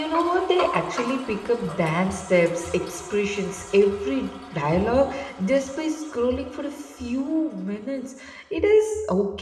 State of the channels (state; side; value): identical; both; correlation 1.00